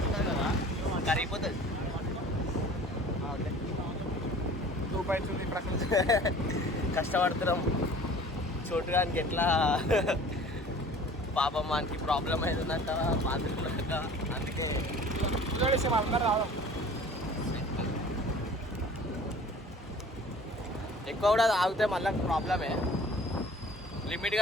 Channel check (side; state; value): both; normal; correlation 0.46